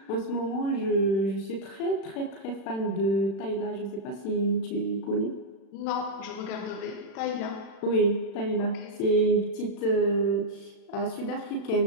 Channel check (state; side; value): late; right; 36 ms